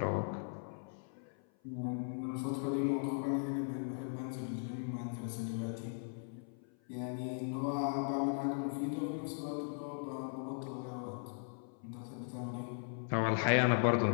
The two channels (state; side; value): silent; right; 52 dB below the other